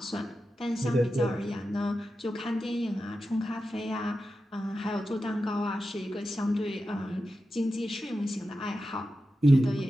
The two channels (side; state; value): both; normal; correlation 0.91